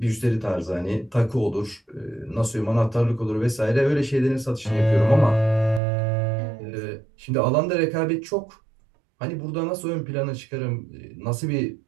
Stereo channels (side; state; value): left; drops out; at 5.8 s